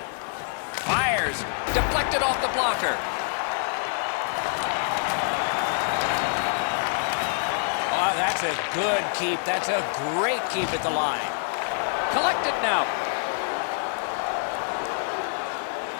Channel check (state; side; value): silent; right; digital silence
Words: Fires. Deflected off the blocker. Oh, that's a good keep. That's a great keep at the line. Collected now.